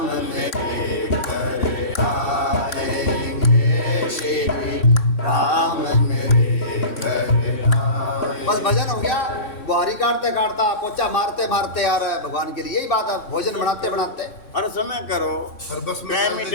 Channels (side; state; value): right; late; 3.6 ms